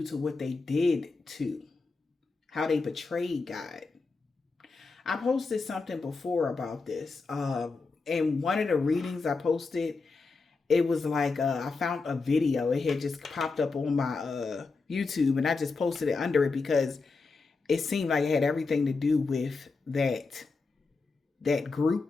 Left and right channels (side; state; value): right; quieter; 4.1 dB